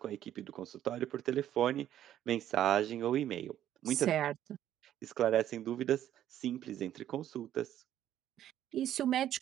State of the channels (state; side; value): quieter; left; 11.5 dB